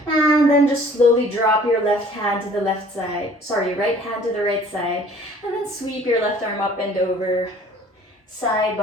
And then just slowly drop your left hand to the left side. Sorry, right hand to the right side. And then sweep your left arm up and over. Side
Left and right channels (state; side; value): normal; both; correlation 0.52